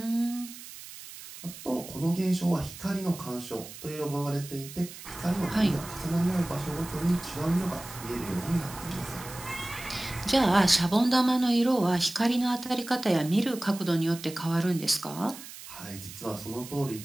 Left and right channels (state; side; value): noise; right; hiss, 14 dB below the sound